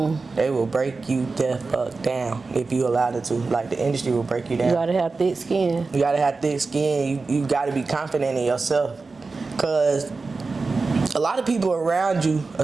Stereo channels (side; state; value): left; quieter; 4.0 dB